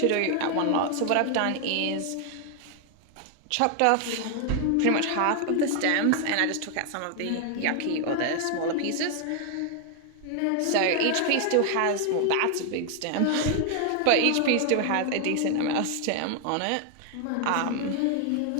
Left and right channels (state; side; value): different; both; correlation 0.00